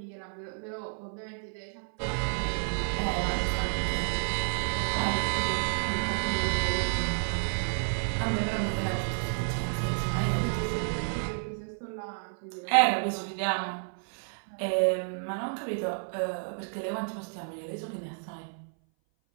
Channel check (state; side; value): silent; left; 57 dB below the other